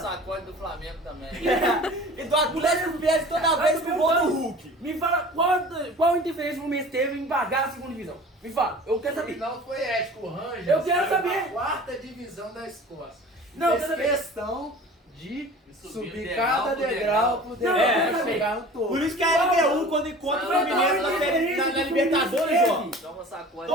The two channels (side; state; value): both; normal; correlation 0.42